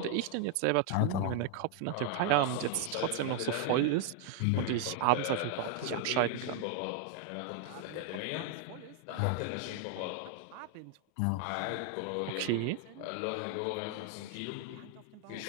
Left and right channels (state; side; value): different; both; correlation 0.00